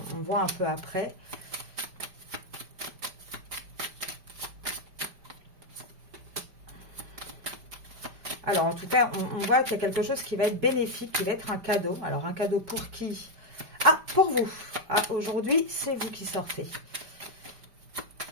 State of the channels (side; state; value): left; late; 5.1 ms